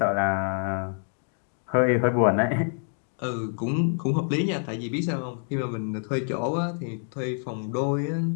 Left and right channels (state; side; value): silent; right; 55 dB below the other